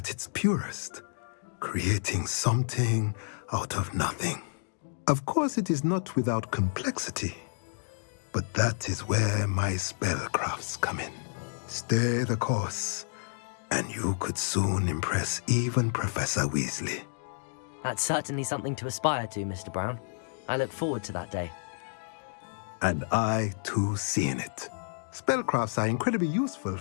its purest, creating something out of nothing. Of course, it is not without complexity, but that is where my spellcrafts come in. Stay the course, and you could soon impress even Professor Weasley. That's certainly something to aspire to, Mr. Brown. I look forward to that day. And I, too, seeing it. Spellcrafts are incredibly useful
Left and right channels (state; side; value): silent; right; digital silence